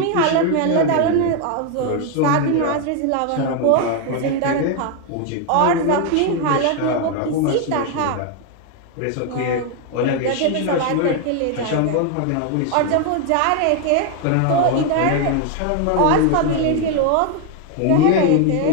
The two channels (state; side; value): different; both; correlation 0.01